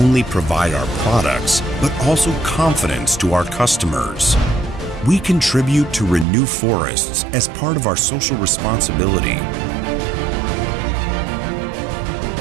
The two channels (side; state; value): left; drops out; at 6.2 s